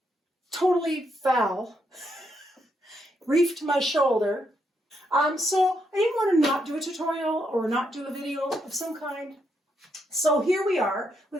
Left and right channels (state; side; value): normal; both; correlation 0.78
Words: totally fell, reefed my shoulder. So I didn't want to not do a tutorial or not do a video of some kind. So here we are